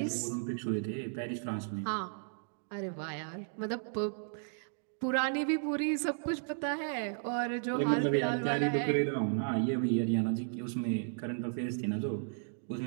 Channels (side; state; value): left; silent; digital silence